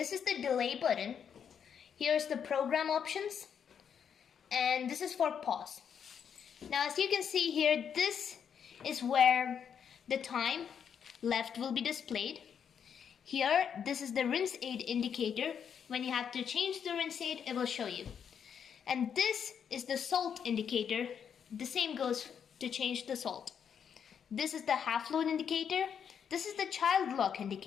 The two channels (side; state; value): right; quieter; 7.7 dB